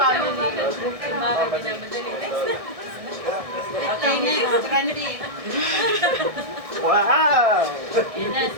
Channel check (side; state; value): left; late; 1.6 ms